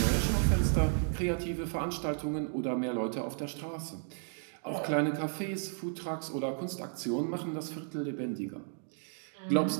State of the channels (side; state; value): left; silent; 55 dB below the other